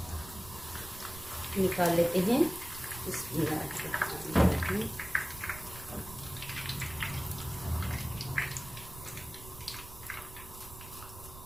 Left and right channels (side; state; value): right; noise; rumble, 15 dB below the sound